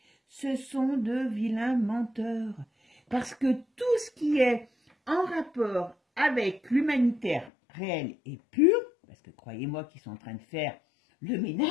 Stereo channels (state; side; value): drops out; right; at 7.5 s